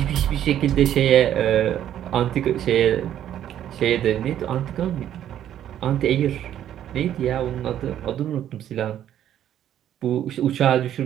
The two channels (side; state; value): left; quieter; 10.9 dB